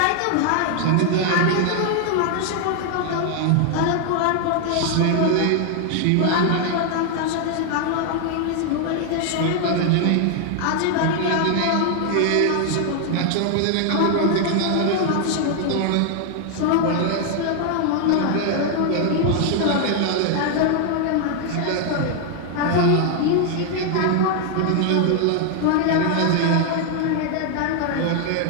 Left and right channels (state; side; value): different; both; correlation 0.00